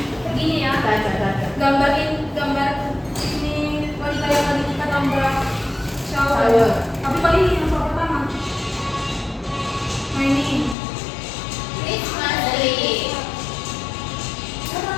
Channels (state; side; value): drops out; right; at 10.8 s